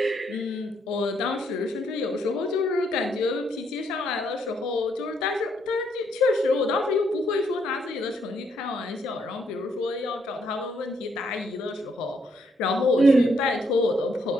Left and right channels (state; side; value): normal; both; correlation 0.73